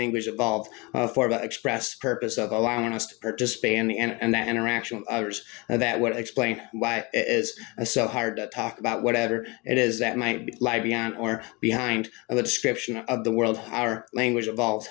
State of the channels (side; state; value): right; quieter; 27.2 dB